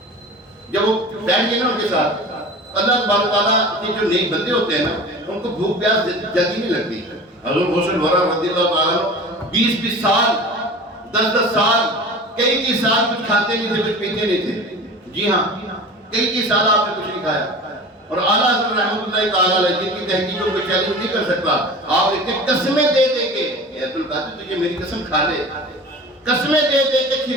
جب وہ بیٹھ گئے نا ان کے ساتھ، اللہ تبارک تعالیٰ کے جو نیک بندے ہوتے ہیں نا ان کو بھوک پیاس جلدی نہیں لگتی. حضور غوث الورا رضی اللہ تعالیٰ 20 سال 10 سال کئی سال کچھ کھاتے نہیں تھے، کچھ پیتے نہیں تھے. جی ہاں کئی سال آپ نے کچھ نہیں کھایا. اور اعلیٰ حضرت رحمۃ اللہ تعالیٰ علیہ جن کی تحقیقوں کو چیلنج نہیں کر سکتا، آپ اتنے قسمیں دے دے کے اے عبد القادر تجھے میری قسم کھا لے، قسمیں دے دے کے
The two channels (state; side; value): normal; both; correlation 0.37